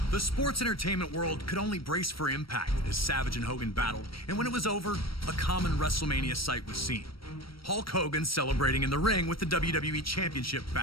sports entertainment world could only brace for impact as Savage and Hogan battled, and when it was over, a common WrestleMania sight was seen. Hulk Hogan celebrating in the ring with the WWE Championship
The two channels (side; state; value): right; late; 0.75 ms